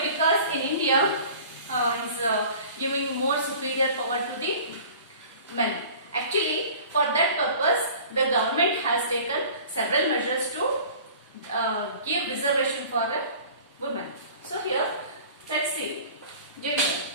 Because in India is giving more superior power to the men. Actually, for that purpose, the government has taken several measures to give reservation for women. So here, let's see gender.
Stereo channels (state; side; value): inverted; both; correlation -0.45